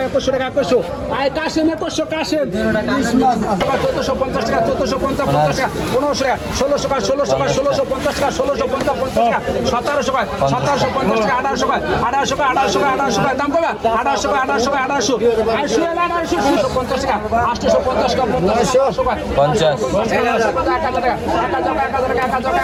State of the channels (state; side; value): identical; both; correlation 1.00